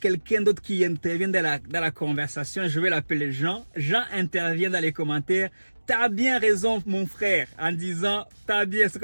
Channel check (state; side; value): inverted; both; correlation -1.00